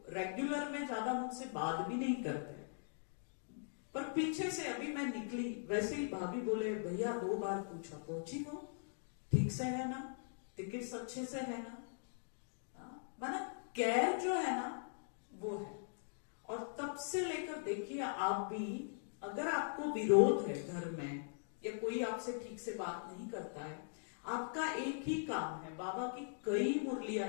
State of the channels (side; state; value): right; silent; digital silence